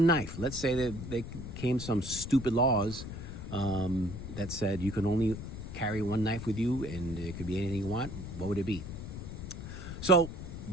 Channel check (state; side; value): noise; left; rumble, 8 dB below the sound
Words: knife. Let's say that there came some stupid laws that said you can only carry one knife with you and it could be anything you want. What would it be? So